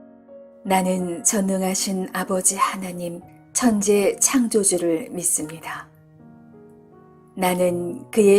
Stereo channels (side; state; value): both; identical; correlation 1.00